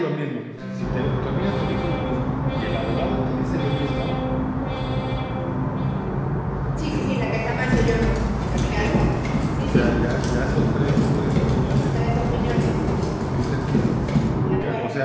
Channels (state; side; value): identical; both; correlation 1.00